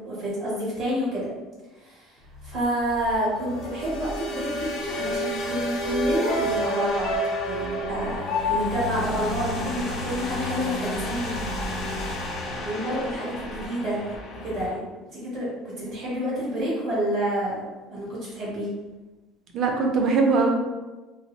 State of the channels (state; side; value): normal; both; correlation 0.45